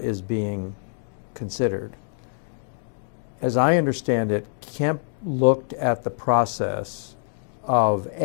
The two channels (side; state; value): right; silent; digital silence